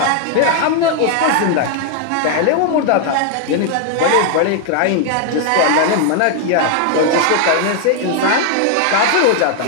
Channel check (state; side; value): different; both; correlation 0.00